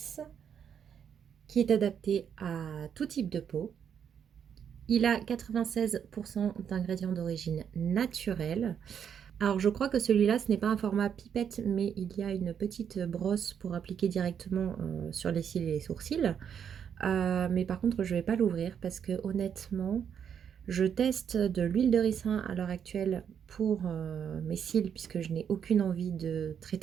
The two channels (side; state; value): left; quieter; 8.0 dB